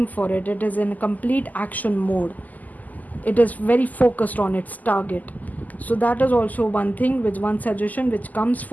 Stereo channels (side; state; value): right; late; 0.081 ms